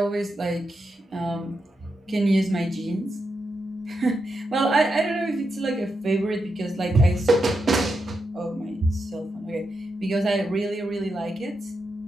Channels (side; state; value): both; normal; correlation 0.86